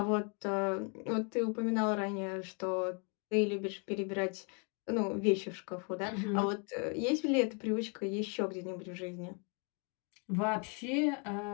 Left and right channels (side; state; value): right; quieter; 35.6 dB